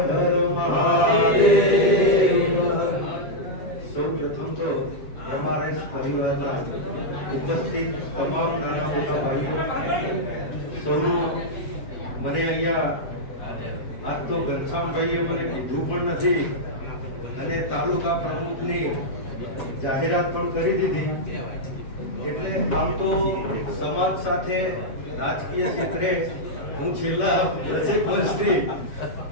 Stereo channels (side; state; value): right; late; 7.6 ms